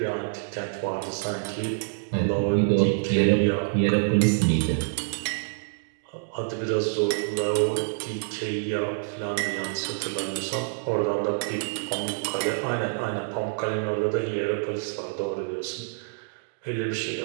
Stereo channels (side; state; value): left; silent; digital silence